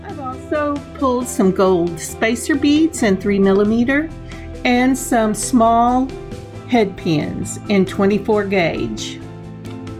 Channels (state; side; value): identical; both; correlation 1.00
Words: I've also pulled some gold spacer beads in 3mm and some small head pins in 24 gauge.